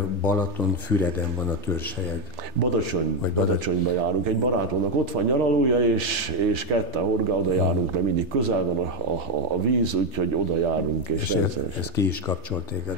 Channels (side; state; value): left; late; 3.3 ms